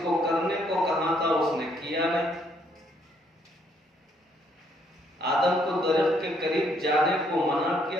کو کرنے کو کہا تھا اس نے کیا نہیں۔ آدم کو درخت کے قریب جانے کو منع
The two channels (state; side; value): normal; both; correlation 0.69